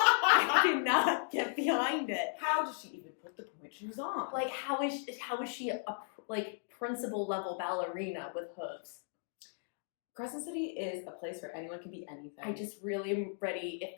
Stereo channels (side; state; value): right; silent; digital silence